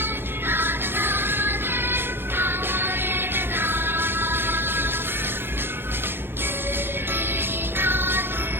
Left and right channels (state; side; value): late; left; 0.10 ms